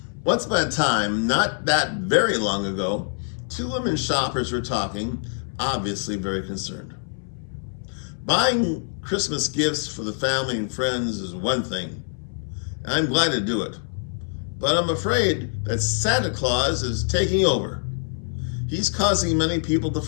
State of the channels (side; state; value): right; silent; 62 dB below the other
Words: Once upon a time, not that very long ago, two women shoppers were talking, obviously very concerned. Buying Christmas gifts for the family and friends is one thing, and I'm glad to do it. But I'm afraid that Santa Claus is taking over. He's causing many people to